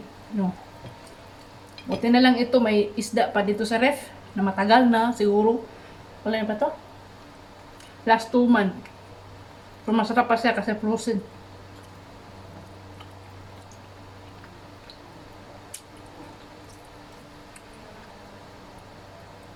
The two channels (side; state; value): both; identical; correlation 1.00